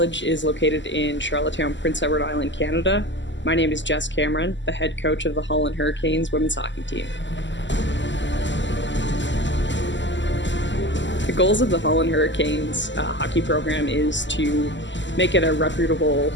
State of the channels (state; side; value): late; right; 0.54 ms